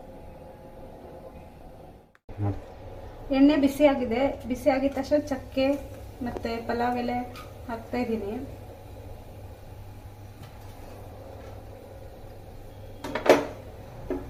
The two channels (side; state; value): both; identical; correlation 1.00